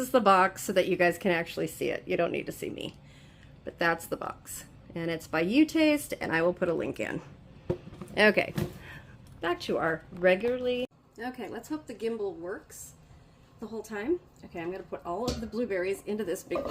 the box so that you guys can actually see it. You don't need to see me. But that's the box. And it's by Jam.Taste, and I will put a link in. Okay, back to our regularly. Okay, let's hope the gimbal works the whole time. Okay, I'm going to put all of the blueberries into this big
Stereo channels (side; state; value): both; identical; correlation 1.00